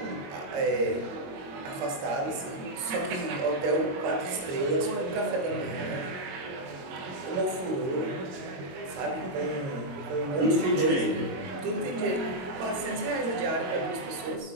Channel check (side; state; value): left; late; 22 ms